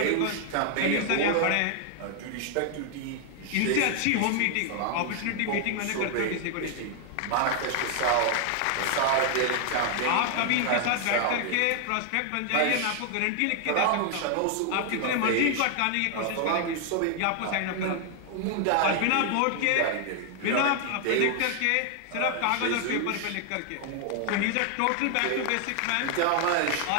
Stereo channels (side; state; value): both; different; correlation 0.00